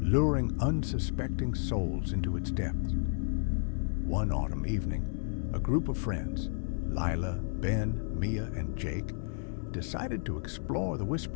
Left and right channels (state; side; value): silent; right; digital silence